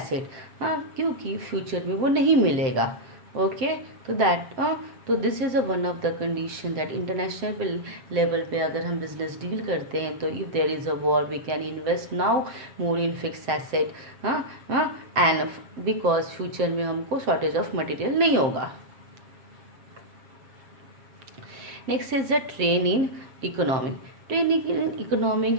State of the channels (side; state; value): left; late; 7.7 ms